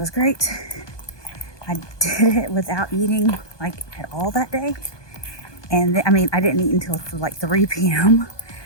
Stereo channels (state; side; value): late; right; 1.2 ms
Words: great. I did it without eating at all that day, and I didn't eat until 3 p.m.